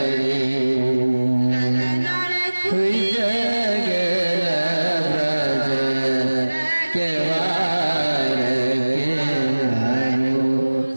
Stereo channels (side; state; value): both; inverted; correlation -1.00